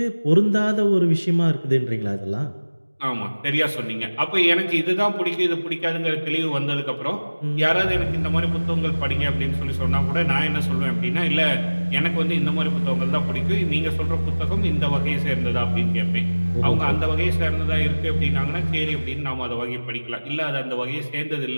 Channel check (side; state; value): both; inverted; correlation -1.00